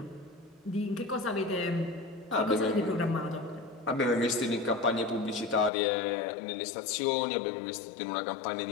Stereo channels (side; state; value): right; drops out; at 5.7 s